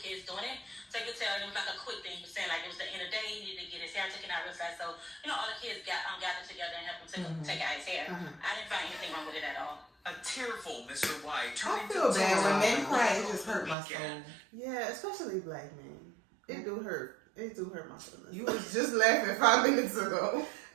doing it. So you could tell it was like a quick thing. He was saying like it was the end of the day. He needed to get his hair taken out real fast. So all the kids gathered together and helped him take out his hair. I didn't find anything wrong with it at all. A tearful Mr. White. I feel bad when men cry. It just hurt my soul. Yeah, especially black men. It do hurt. It do hurt my feelings. You was just laughing 5 minutes ago.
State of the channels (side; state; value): left; drops out; at 13.8 s